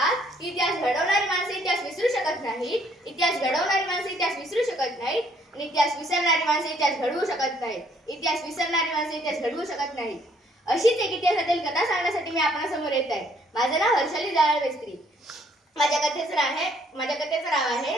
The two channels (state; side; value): normal; both; correlation 0.65